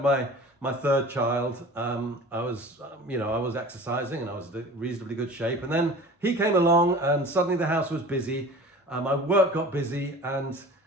my third child, I was exercising and I was in reasonably good shape, and then he came along and suddenly the house was busy, my work got busy, and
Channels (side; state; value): both; normal; correlation 0.41